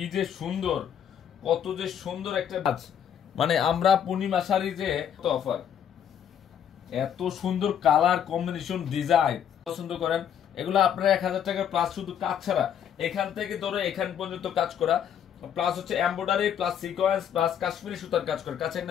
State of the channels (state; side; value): quieter; right; 9.0 dB